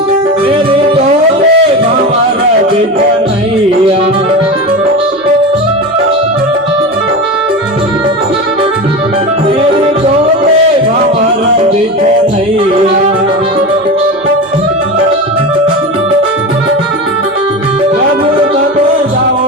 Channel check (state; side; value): noise; right; hum, 29 dB below the sound